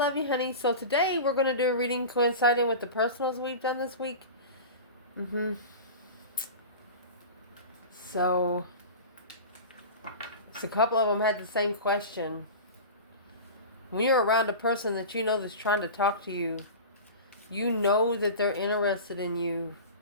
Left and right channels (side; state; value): both; inverted; correlation -0.32